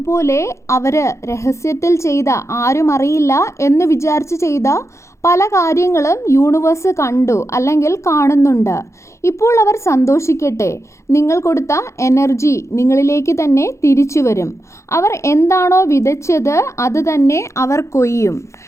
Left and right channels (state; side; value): late; right; 0.14 ms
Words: അവർ രഹസ്യത്തിൽ ചെയ്ത, ആരും അറിയില്ല എന്ന് വിചാരിച്ച് ചെയ്ത പല കാര്യങ്ങളും യൂണിവേഴ്സ് കണ്ടു അല്ലെങ്കിൽ കാണുന്നുണ്ട്. ഇപ്പോൾ അവർ സന്തോഷിക്കട്ടെ. നിങ്ങൾ കൊടുത്ത എനർജി നിങ്ങളിലേക്ക് തന്നെ തിരിച്ചു വരും. അവർ എന്താണോ വിതച്ചത് അത് തന്നെ അവർ കൊയ്യും.